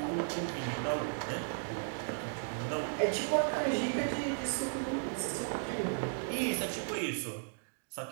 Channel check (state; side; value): silent; left; digital silence